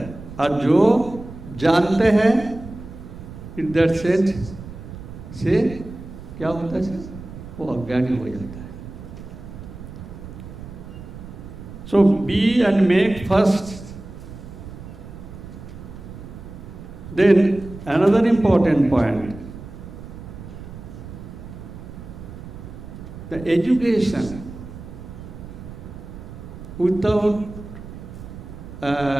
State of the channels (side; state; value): right; noise; rumble, 13 dB below the sound